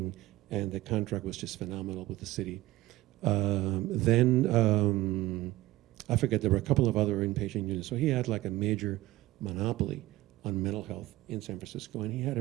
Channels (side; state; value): left; quieter; 17.6 dB